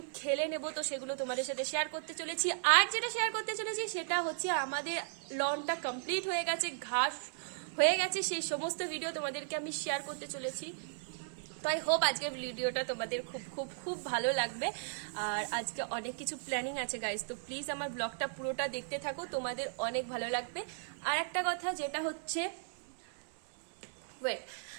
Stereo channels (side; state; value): left; silent; 54 dB below the other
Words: খেলে নেব। তো সেগুলো তোমাদের সাথে শেয়ার করতে চলেছি। আর যেটা শেয়ার করতে চলেছি সেটা হচ্ছে আমাদের লনটা কমপ্লিট হয়ে গেছে, ঘাস হয়ে গেছে, সেই সমস্ত ভিডিও তোমাদেরকে আমি শেয়ার করতে চলেছি। তো আই হোপ আজকের ভিডিওটা তোমাদের খুব খুব খুব ভালো লাগবে। আর আজকে অনেক কিছু প্ল্যানিং আছে গাইস, তো প্লিজ আমার ব্লগটা পুরোটা দেখতে থাকো, তোমাদের অনেক ভালো লাগবে। আর একটা কথা যেটা হচ্ছে